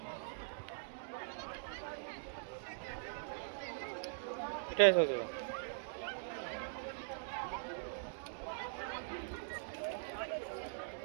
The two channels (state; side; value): silent; left; digital silence